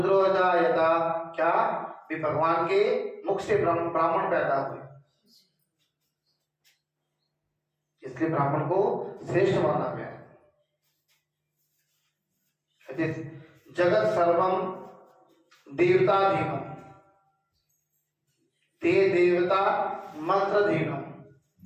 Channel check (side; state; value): both; identical; correlation 1.00